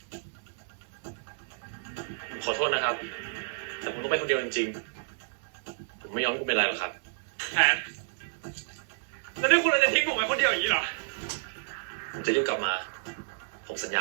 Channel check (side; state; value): left; silent; 58 dB below the other